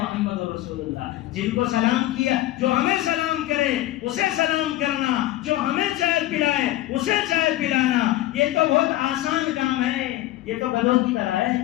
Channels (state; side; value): quieter; right; 15.5 dB